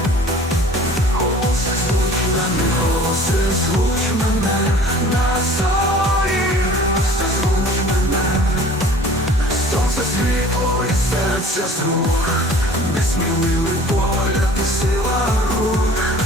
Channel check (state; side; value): normal; both; correlation 0.48